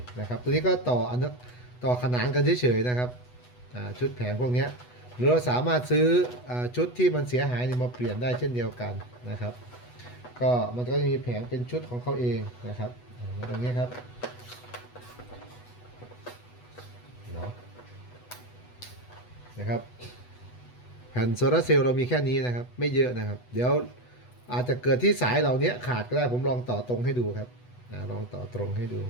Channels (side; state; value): right; late; 8.1 ms